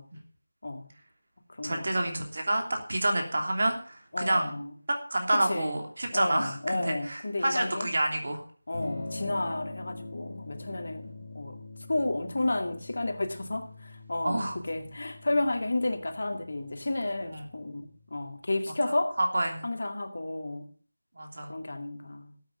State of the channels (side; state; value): both; inverted; correlation -0.97